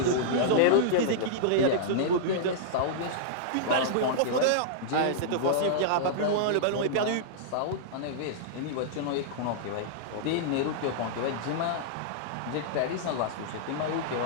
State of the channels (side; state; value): both; different; correlation -0.02